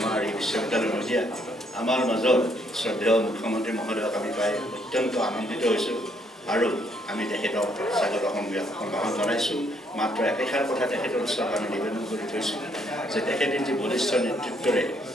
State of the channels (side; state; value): both; normal; correlation 0.70